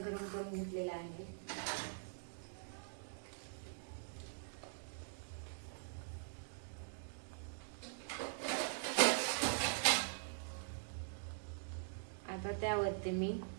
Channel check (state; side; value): silent; left; digital silence